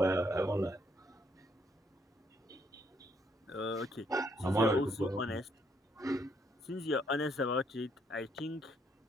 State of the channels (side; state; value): both; normal; correlation 0.71